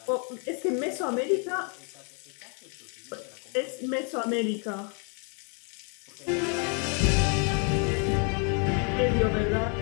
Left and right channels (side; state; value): right; quieter; 38.6 dB